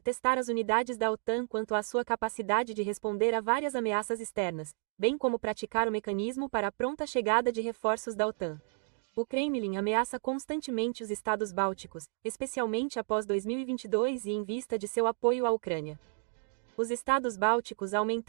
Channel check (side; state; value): left; silent; 57 dB below the other